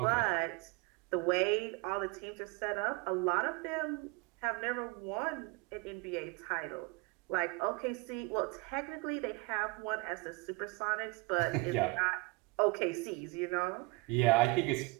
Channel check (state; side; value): quieter; left; 25.7 dB